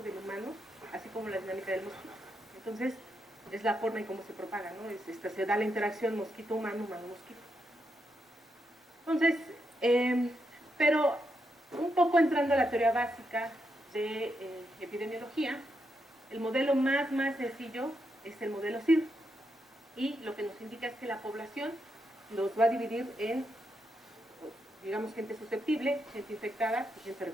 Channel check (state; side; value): normal; both; correlation 0.82